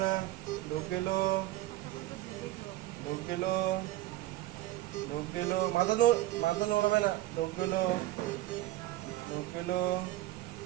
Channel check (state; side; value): quieter; left; 16.2 dB